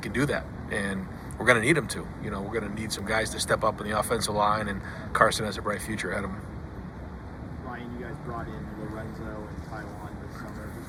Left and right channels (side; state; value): both; identical; correlation 1.00